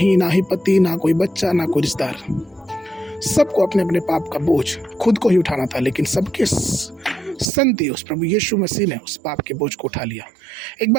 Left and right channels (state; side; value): drops out; left; at 7.5 s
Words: ना ही पति, ना कोई बच्चा, ना कोई रिश्तेदार। सबको अपने अपने पाप का बोझ खुद को ही उठाना था, लेकिन सबके संति उस प्रभु यीशु मसीह ने उस पाप के बोझ को उठा लिया। एक